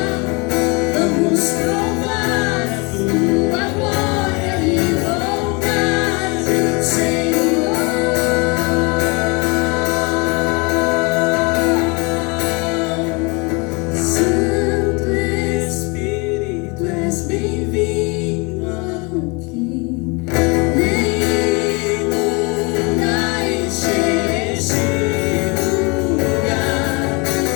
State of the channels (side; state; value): right; quieter; 29.3 dB